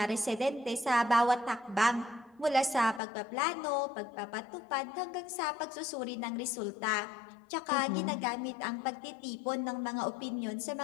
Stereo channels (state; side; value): drops out; right; at 3.0 s